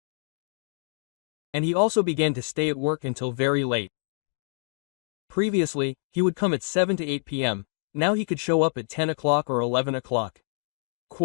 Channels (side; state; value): right; silent; digital silence